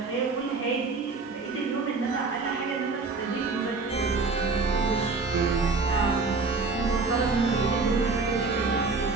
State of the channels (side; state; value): left; quieter; 4.1 dB